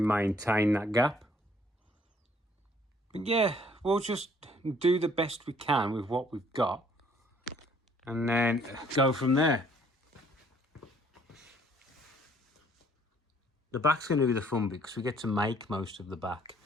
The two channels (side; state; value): both; normal; correlation 0.62